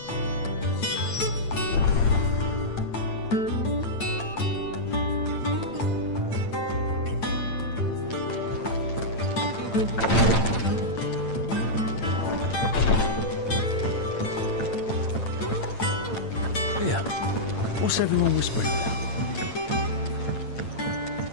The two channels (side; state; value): right; late; 8.8 ms